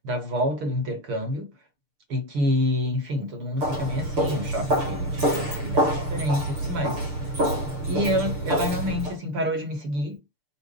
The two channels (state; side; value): late; left; 6.8 ms